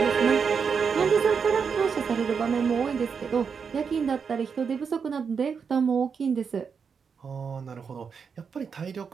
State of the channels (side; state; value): left; quieter; 6.1 dB